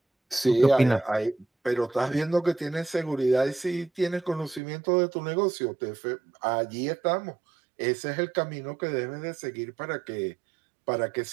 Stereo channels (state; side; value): drops out; left; at 4.6 s